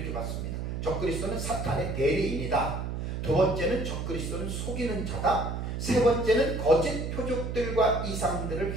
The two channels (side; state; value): right; noise; hum, 4 dB below the sound